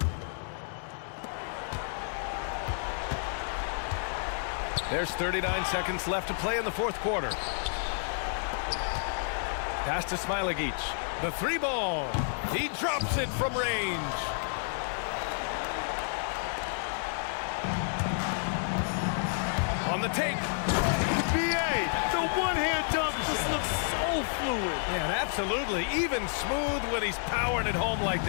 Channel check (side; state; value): right; silent; digital silence